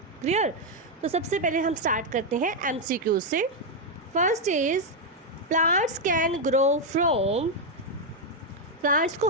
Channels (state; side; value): normal; both; correlation 0.01